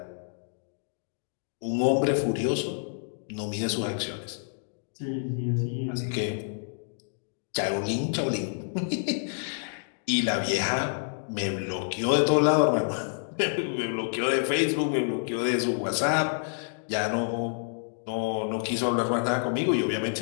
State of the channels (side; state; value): right; silent; digital silence